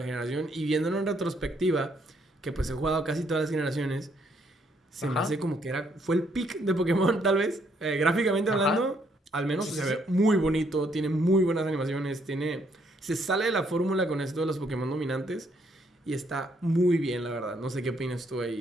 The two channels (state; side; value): normal; both; correlation 0.70